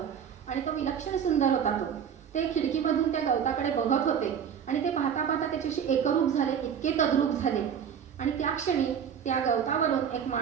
आणि तो विलक्षण सुंदर होता. ते खिडकीमधून त्या गवताकडे बघत होते आणि ते पाहता पाहता त्याच्याशी एकरूप झाले, इतके तद्रूप झाले आणि त्या क्षणी त्या गवतावरून एक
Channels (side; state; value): left; quieter; 8.0 dB